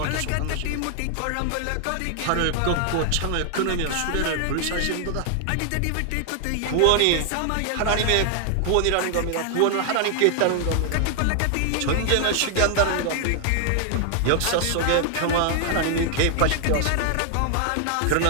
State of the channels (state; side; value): different; both; correlation 0.00